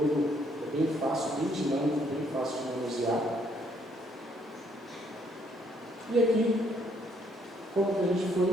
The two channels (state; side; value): normal; both; correlation 0.69